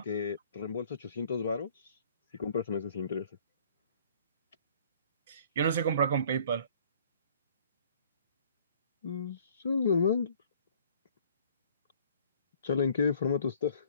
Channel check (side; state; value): both; inverted; correlation -0.55